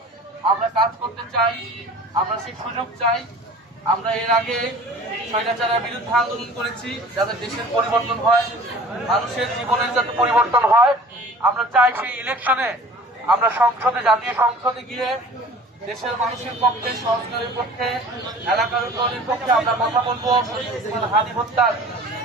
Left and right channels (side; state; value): both; normal; correlation 0.45